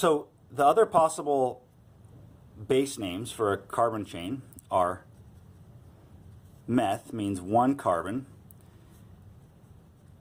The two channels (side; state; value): both; identical; correlation 1.00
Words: the other possible base names for a carbon chain are meth, means 1 carbon,